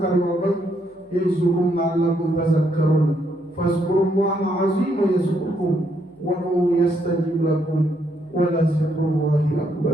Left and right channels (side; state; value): left; noise; hum, 30 dB below the sound